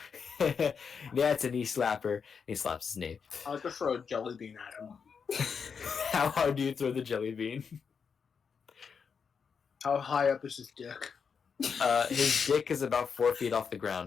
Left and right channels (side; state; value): right; quieter; 6.1 dB